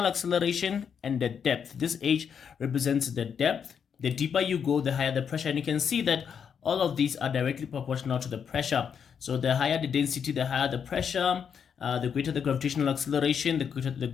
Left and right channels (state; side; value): quieter; right; 7.3 dB